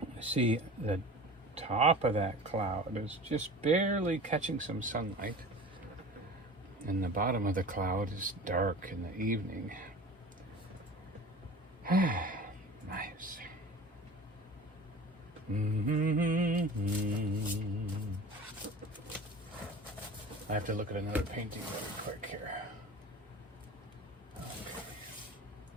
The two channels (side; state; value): both; normal; correlation 0.38